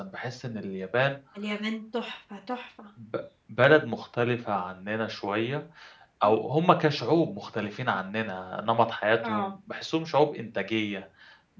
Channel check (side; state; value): both; identical; correlation 1.00